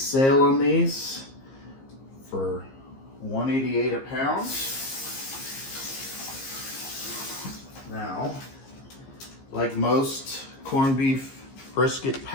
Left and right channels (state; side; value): late; right; 15 ms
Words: on these for $1.88 a pound. Now, like most corned beef brisket